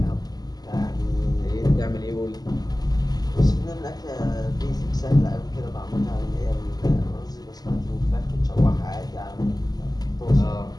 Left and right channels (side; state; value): right; late; 0.19 ms